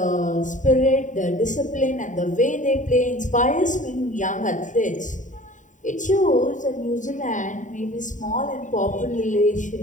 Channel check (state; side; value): late; right; 0.36 ms